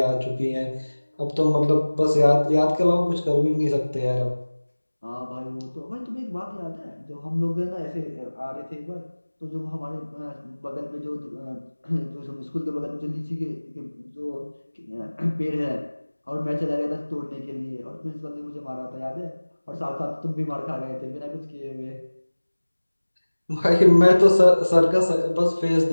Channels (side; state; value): both; inverted; correlation -1.00